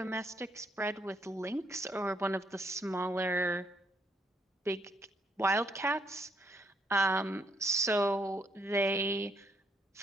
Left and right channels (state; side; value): normal; both; correlation 0.72